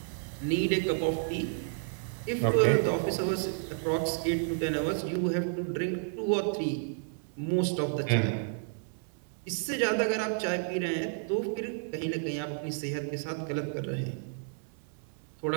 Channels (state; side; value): silent; left; 57 dB below the other